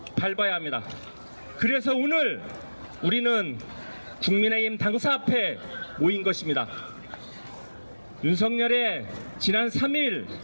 밟아야 합니다. 그래서 오늘 우리는 국민의힘 당사 앞에 모인 것입니다. 윤석열의 지난 3일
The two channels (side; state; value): both; inverted; correlation -1.00